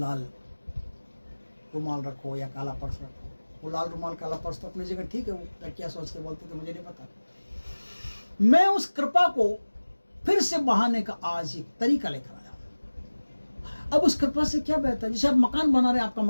रुमाल रखो या काला पर्स रखो। वो लाल रुमाल काला पर्स तो अपनी जगह ठीक है, वो क्या सोच के बोलते थे मुझे नहीं पता। मैं उस कृपा को फिर से बहाने का आज एक तरीका लेकर आया हूं। अब उस कृपा से क्या बेहतर है, जैसे आप मकान बना रहे हैं, आपका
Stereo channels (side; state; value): both; inverted; correlation -1.00